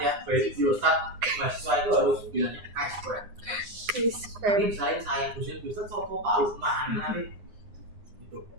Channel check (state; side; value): late; left; 9.7 ms